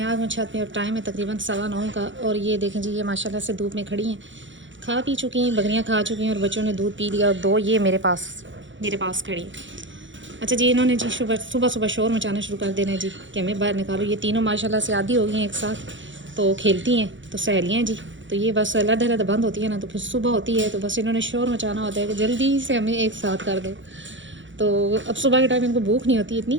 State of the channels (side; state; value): left; late; 0.55 ms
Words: आज हूँ छत पे और टाइम है तकरीबन 9:15 का। और ये देखें जी, ये माशाल्लाह से धूप में खड़ी हैं, खा पी चुकी हैं, बकरियाँ खा चुकी हैं और बच्चों ने दूध पी लिया। और दो ये मेरे पास खड़ी हैं। अच्छा जी, इन्होंने जी सुबह सुबह सुबह शोर मचाना शुरू कर देना है जी कि हमें बाहर निकालो। ये तीनों माशाल्लाह से आदी हो गई हैं एक साथ, तो खेलती हैं, तो सहेलियाँ हैं जी। तो ये बस अलग अलग बंद होती है ना, तो फिर सुबह होती है तो बस इन्होंने शोर मचाना होता है कि जल्दी से हमें एक साथ कर दो। तो अब सुबह के टाइम इनको भूख नहीं होती